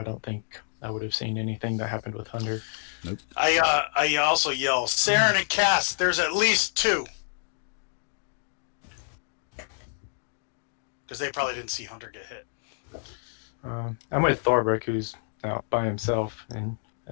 don't think I would have seen anything that happened with Hunter. Nope. I also yell, Saren and Cass, there's at least 2. Because they probably didn't see Hunter get hit. I'm with Thorbrick, who's out by himself, and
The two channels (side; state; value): right; silent; digital silence